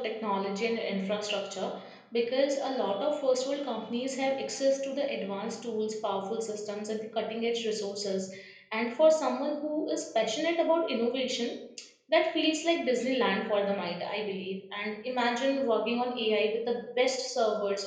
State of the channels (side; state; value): both; identical; correlation 1.00